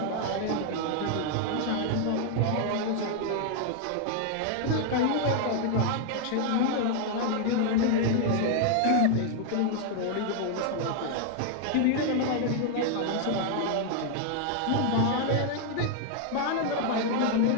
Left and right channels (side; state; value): both; different; correlation 0.00